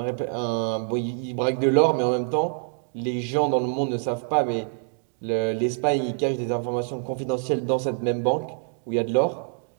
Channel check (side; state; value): left; silent; 56 dB below the other